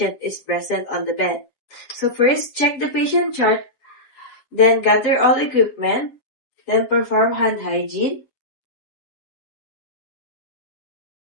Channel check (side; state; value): right; late; 7.3 ms